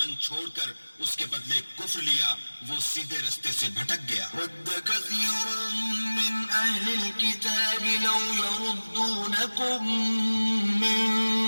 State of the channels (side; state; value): both; inverted; correlation -1.00